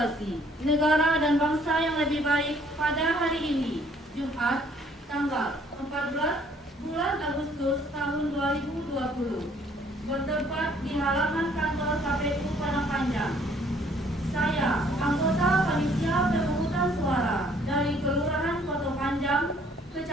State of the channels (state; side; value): normal; both; correlation 0.62